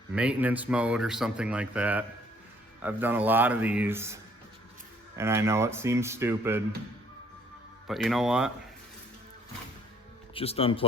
maintenance mode or something like that. I've done a lot of these and I know it seems stupid, but you know what? Just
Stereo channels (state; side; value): normal; both; correlation 0.62